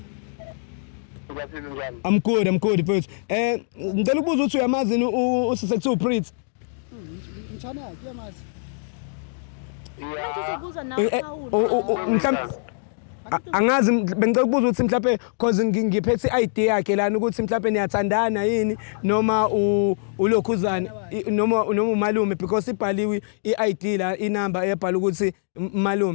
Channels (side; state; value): right; silent; digital silence